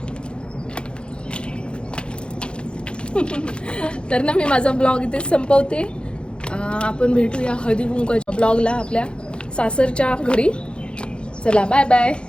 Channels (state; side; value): late; right; 0.055 ms